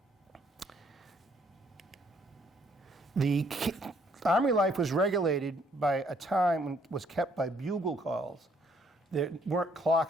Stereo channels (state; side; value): normal; both; correlation 0.66